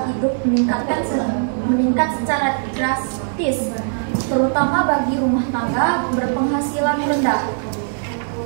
hidup meningkat secara drastis, terutama bagi rumah tangga berpenghasilan rendah.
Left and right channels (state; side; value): silent; left; digital silence